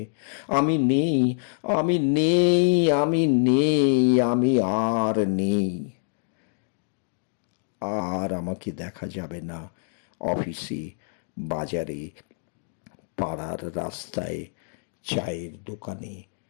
আমি নেই, আমি নেই, আমি নেই, আমি আর নেই। আর আমাকে দেখা যাবে না অফিসে, বাজারে, পাড়ার রাস্তায়, চায়ের দোকানে,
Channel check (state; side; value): silent; right; digital silence